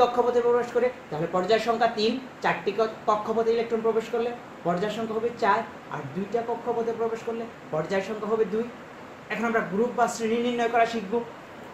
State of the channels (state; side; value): identical; both; correlation 1.00